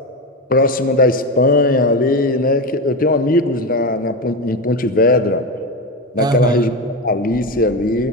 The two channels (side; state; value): both; normal; correlation 0.17